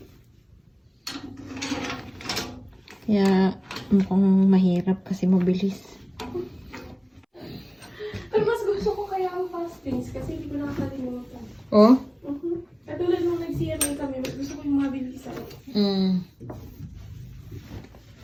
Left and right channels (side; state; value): both; identical; correlation 1.00